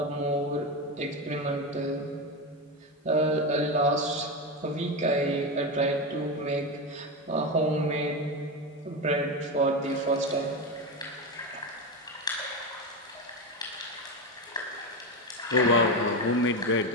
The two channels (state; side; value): normal; both; correlation 0.15